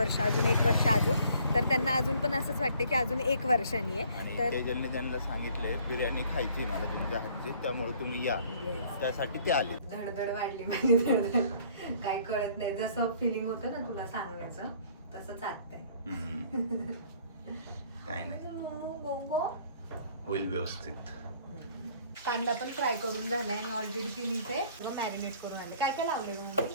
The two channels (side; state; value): both; inverted; correlation -0.58